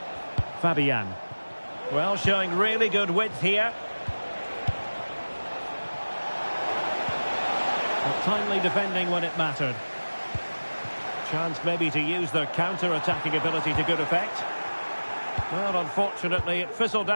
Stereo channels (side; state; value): both; inverted; correlation -1.00